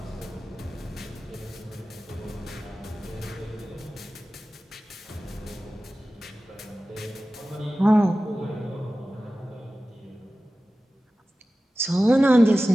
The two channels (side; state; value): both; normal; correlation 0.95